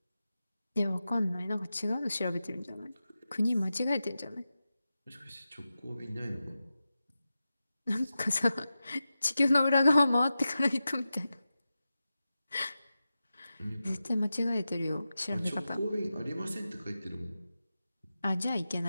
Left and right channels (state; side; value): inverted; both; correlation -0.92